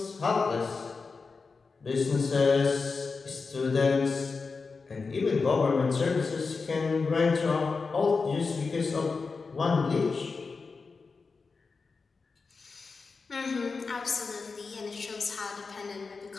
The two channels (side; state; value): right; quieter; 4.5 dB